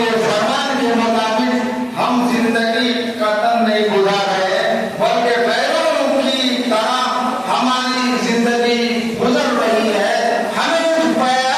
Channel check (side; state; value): both; identical; correlation 1.00